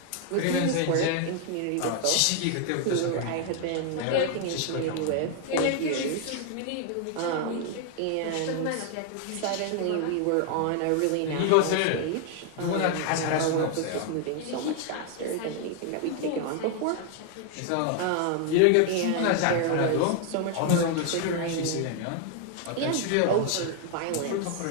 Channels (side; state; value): both; different; correlation 0.00